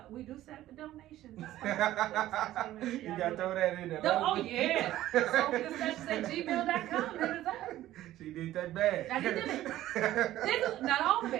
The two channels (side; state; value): left; quieter; 14.3 dB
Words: We do set up the donations. You gotta throw that in there. Oh yeah. SoulfulDiscussions@gmail.com. Hit us up. She did that bad. I did it. Not all of